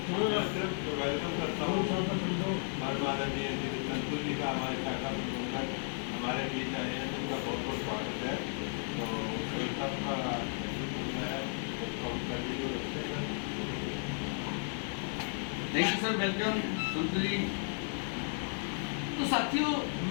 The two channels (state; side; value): silent; right; 55 dB below the other